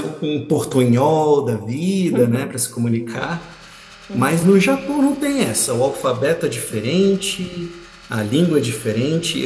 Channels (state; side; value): identical; both; correlation 1.00